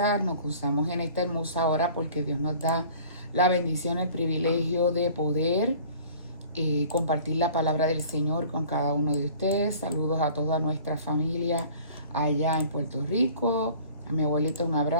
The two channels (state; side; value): inverted; both; correlation -0.48